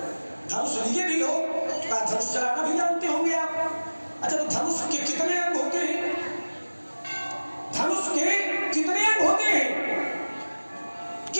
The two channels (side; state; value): both; inverted; correlation -1.00